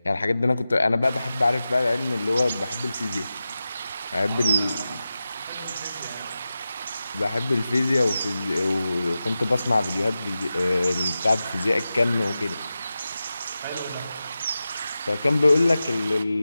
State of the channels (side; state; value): both; inverted; correlation -0.93